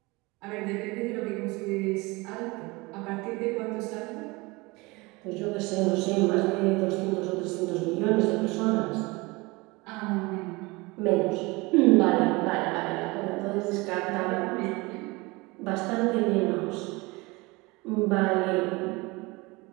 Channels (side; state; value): left; quieter; 24.2 dB